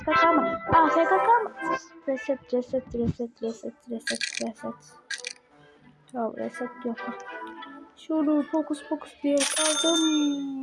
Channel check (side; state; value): both; identical; correlation 1.00